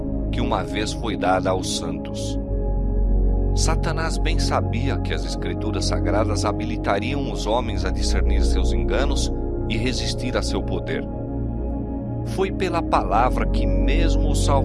que uma vez foi dada aos santos. Satanás bem sabia que as Escrituras Sagradas habilitariam os homens a discernir seus enganos e resistir a seu poder. Foi pela palavra que mesmo o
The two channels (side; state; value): both; identical; correlation 1.00